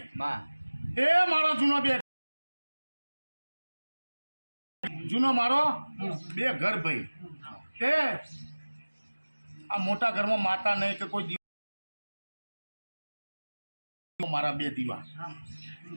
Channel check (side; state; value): both; inverted; correlation -1.00